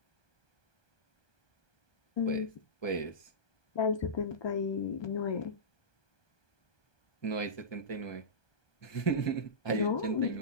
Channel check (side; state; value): right; late; 1.2 ms